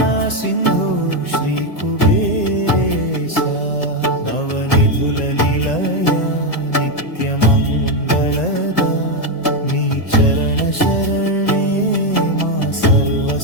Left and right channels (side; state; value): right; late; 1.9 ms